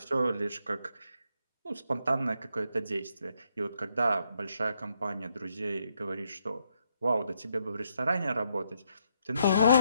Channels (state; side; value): inverted; both; correlation -0.77